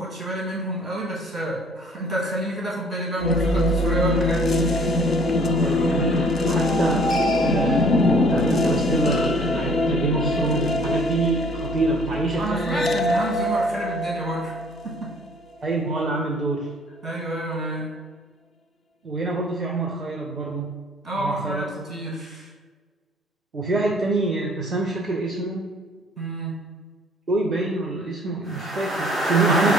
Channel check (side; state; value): both; normal; correlation 0.55